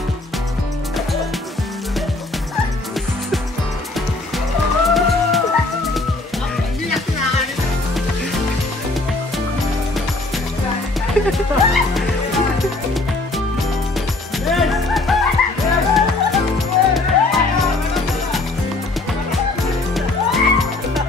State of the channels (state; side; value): quieter; right; 3.1 dB